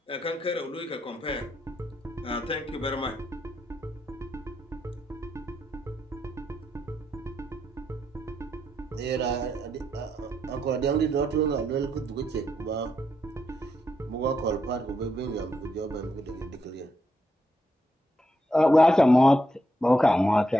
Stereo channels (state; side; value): normal; both; correlation 0.80